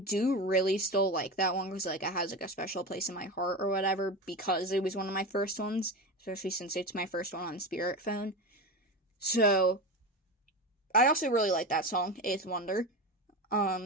really still like that one, because, like, it has, like, a special place in my heart or whatever, because it was one of my first ones, especially since it's my first one on Spirit Phone. So, I also really like that song, Eighth Wonder.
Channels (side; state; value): both; normal; correlation 0.22